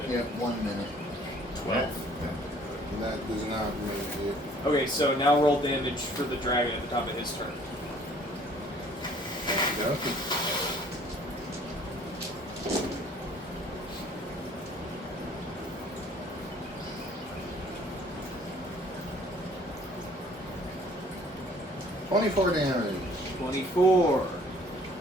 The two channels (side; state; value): both; normal; correlation 0.56